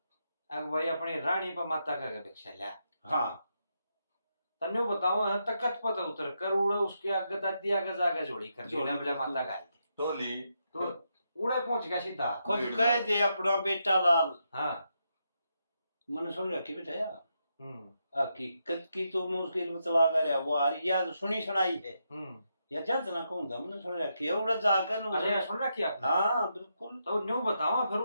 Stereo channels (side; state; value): both; inverted; correlation -0.82